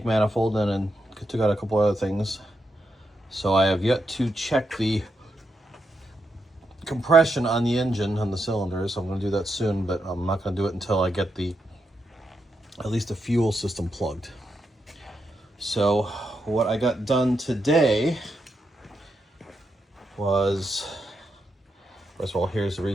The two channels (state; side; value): normal; both; correlation 0.83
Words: manifold and it took out a couple other things. So I have yet to check the compression on the engine, on the cylinders. I'm going to do that soon, but I'm not going to do it until I get at least the fuel system plugged. So what I got done today was, first of all, here's the